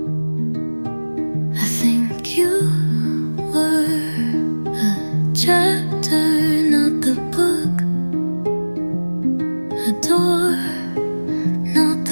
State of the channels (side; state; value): both; inverted; correlation -1.00